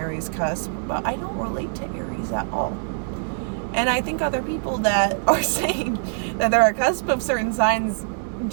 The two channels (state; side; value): silent; left; digital silence